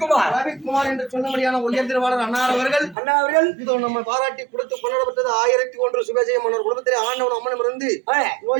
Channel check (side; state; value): left; drops out; at 3.0 s